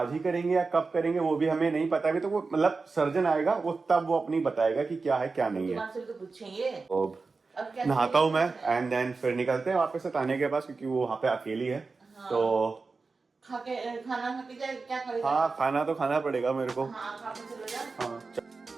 ही करेंगे या कब करेंगे वो भी हमें नहीं पता। अभी तो वो मतलब सर्जन आएगा, वो तब वो अपनी बताएगा कि क्या है क्या नहीं है। तो पूछेंगे। अब नहाता हूँ मैं, एंड देन फिर निकलते हैं वापस से ताने के पास, क्योंकि वो वहाँ पे अकेली है। तो खाना खा के जाए, क्या करेगा? हाँ खाना तो खाना पड़ेगा मेरे को। हाँ खा के चलो जा। हाँ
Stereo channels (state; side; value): quieter; left; 4.2 dB